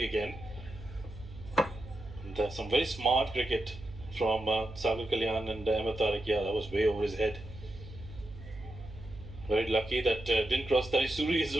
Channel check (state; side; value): noise; right; hum, 15 dB below the sound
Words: again. And there's some very smart cricket from SAGHIR Kalyan and AHMED TARIQ. Yeah, that was way over his head. Very lucky that didn't cross Tarisuri as